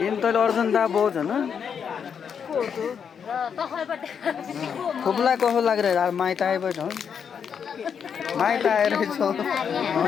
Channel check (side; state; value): right; quieter; 7.2 dB